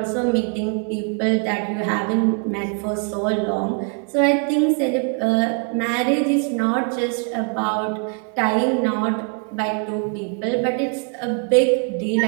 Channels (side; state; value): left; quieter; 39.8 dB